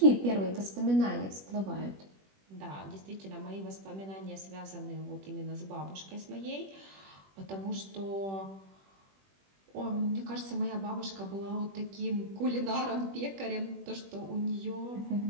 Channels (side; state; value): left; late; 21 ms